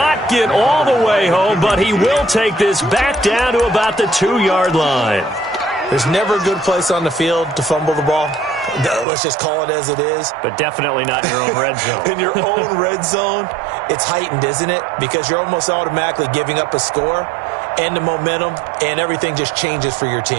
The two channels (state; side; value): drops out; left; at 9.1 s